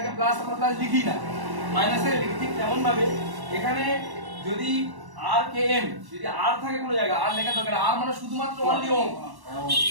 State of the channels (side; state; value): left; late; 1.1 ms